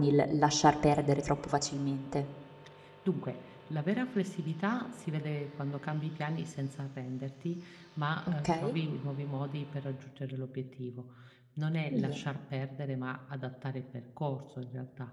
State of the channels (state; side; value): identical; both; correlation 1.00